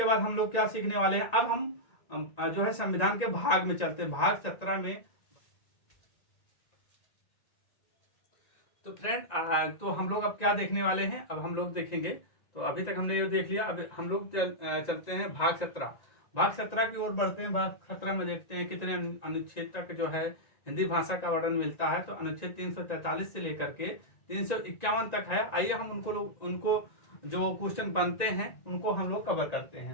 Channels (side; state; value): right; late; 1.9 ms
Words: बाद हम लोग क्या सीखने वाले हैं? अब हम जो है संविधान के भाग में चलते हैं, भाग 17 में। तो फ्रेंड, तो हम लोग अब क्या देखने वाले हैं? अब हम लोग देखेंगे, तो अभी तक हमने ये देख लिया। अब हम लोग चलते हैं भाग 17। भाग 17 की ओर बढ़ते हैं। भाग 17 में देखते हैं कितने अनुच्छेद तक जो है हिंदी भाषा का वर्णन मिलता है। तो अनुच्छेद 343 से लेकर के 351 तक है। आइए हम उनको जो क्वेश्चन बनते हैं उनको हम लोग कवर करते